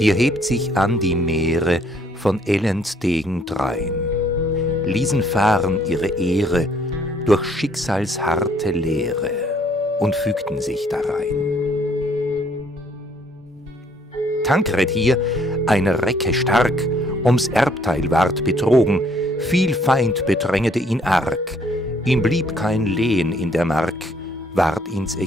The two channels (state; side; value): normal; both; correlation 0.64